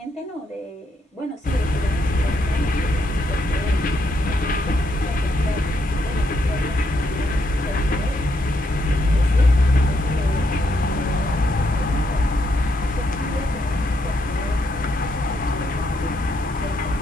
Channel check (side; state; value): both; normal; correlation 0.77